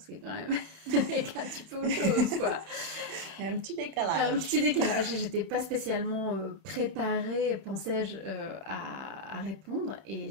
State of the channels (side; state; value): left; late; 31 ms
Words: que quand même avec un petit peu autre chose, quoi. Il y a un petit décalage. J'étais pas spécialement préparée, pensais-je, à répondre,